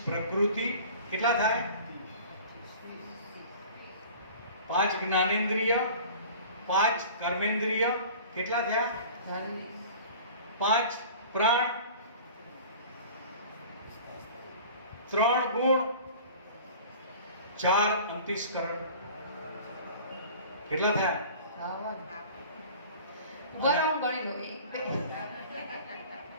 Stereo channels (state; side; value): inverted; both; correlation -0.42